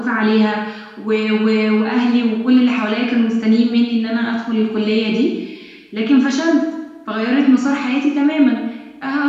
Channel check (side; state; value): both; identical; correlation 1.00